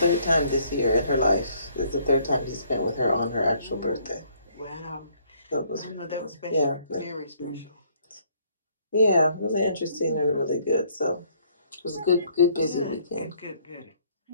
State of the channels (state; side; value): inverted; both; correlation -0.64